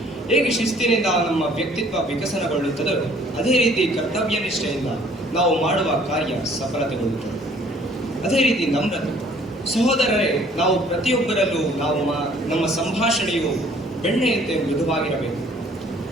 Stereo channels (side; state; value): both; normal; correlation 0.57